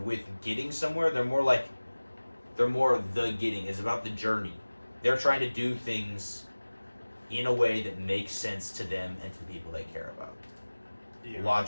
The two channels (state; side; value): inverted; both; correlation -1.00